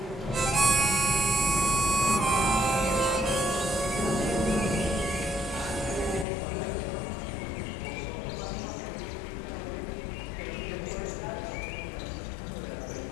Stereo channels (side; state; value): right; drops out; at 6.2 s